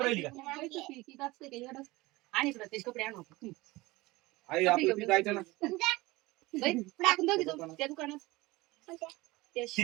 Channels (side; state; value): left; quieter; 21.0 dB